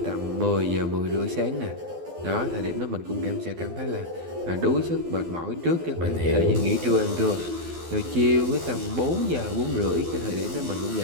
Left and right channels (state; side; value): late; left; 12 ms